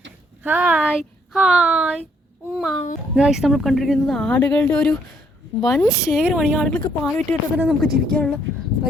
ഹായ് ഹായ് ഉമ്മ. ഗൈസ്, നമ്മൾ കണ്ടിരിക്കുന്നത് ആടുകളുടെ ഒരു വൻ ശേഖരമാണ്. ഈ ആടുകൾക്ക് പാൽ വിറ്റിട്ട് തന്നെ നമുക്ക് ജീവിക്കാനുള്ള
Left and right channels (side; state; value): both; normal; correlation 0.69